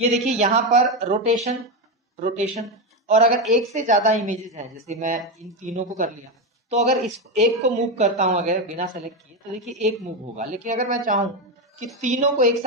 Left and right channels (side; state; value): both; normal; correlation 0.11